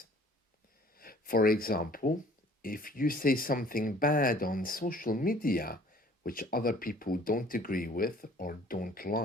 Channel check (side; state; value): both; normal; correlation 0.53